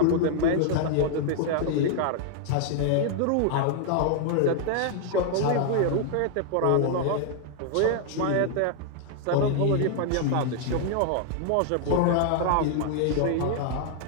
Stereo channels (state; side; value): different; both; correlation 0.00